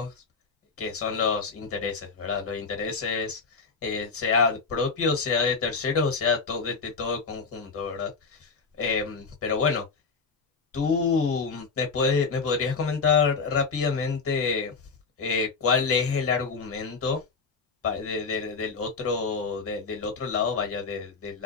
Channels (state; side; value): quieter; right; 4.8 dB